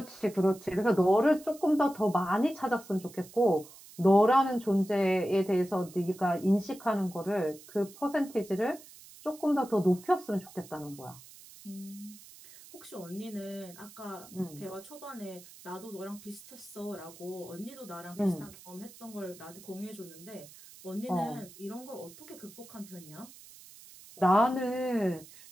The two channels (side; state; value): right; noise; hiss, 20 dB below the sound